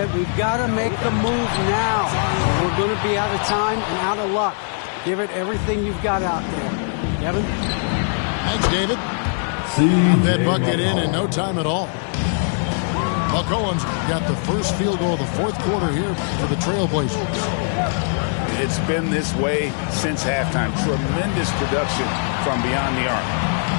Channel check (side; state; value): right; silent; 59 dB below the other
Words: we've got to make the move now. We're going to be out of time and out of luck. Give it everything you've got out there. Kevin? Thanks, David. That bucket in no time at all. McCollum's got the first field goal of the fourth quarter here for the Trailblazers. It's been this way since halftime. Tremendous production from beyond the arc.